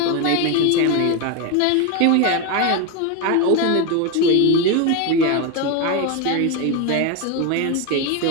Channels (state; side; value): different; both; correlation 0.02